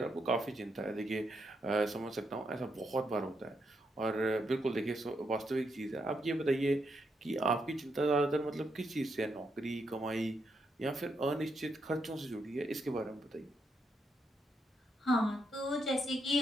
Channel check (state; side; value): normal; both; correlation 0.80